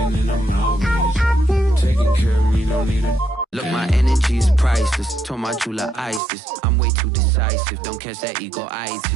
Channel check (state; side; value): drops out; left; at 6.2 s